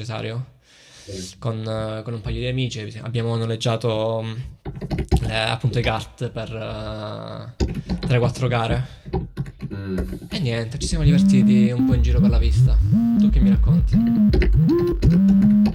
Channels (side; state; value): both; identical; correlation 1.00